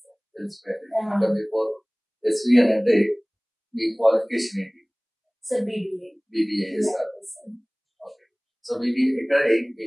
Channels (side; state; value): both; identical; correlation 1.00